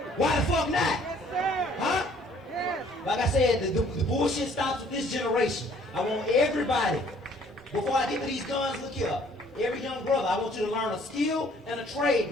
Why the fuck not? Huh? Like I said, the bullshit stops with this generation. I want everybody, before I get to these guns, look here. Every young brother, I want you to learn a skill and a trade,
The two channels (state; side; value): normal; both; correlation 0.59